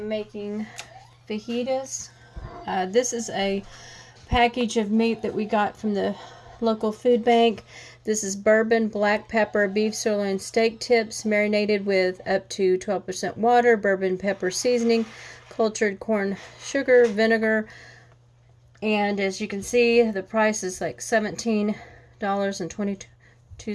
making fajitas. This is a package of meat that we got from the local food bank. This is bourbon, black pepper, beef sirloin steak tips marinated with up to 12% water, bourbon pepper seasoning, cultured corn sugar, vinegar, and as you can see, the price is like $17.22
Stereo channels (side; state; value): both; identical; correlation 1.00